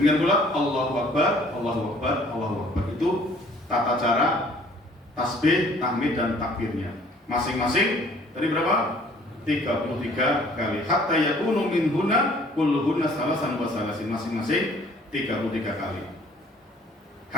pula Allahu akbar, Allahu akbar, Allahu akbar. Itu tata cara tasbih, tahmid dan takbirnya. Masing-masing tadi berapa? 33 kali. Hatta yakunu minhunna kulluhunna salasan wa salasin. Masing-masing 33 kali.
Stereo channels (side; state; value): both; normal; correlation 0.56